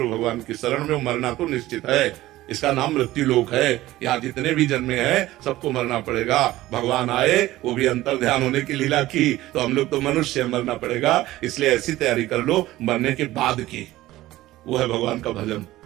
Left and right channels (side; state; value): left; quieter; 16.3 dB